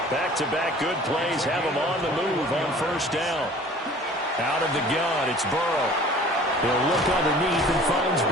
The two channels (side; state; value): both; normal; correlation 0.48